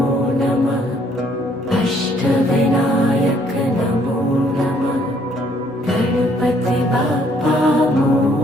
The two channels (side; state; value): both; normal; correlation 0.65